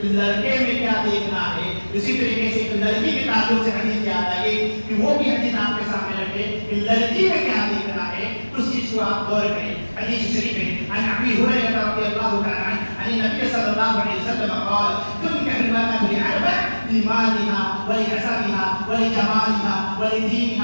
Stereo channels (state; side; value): inverted; both; correlation -1.00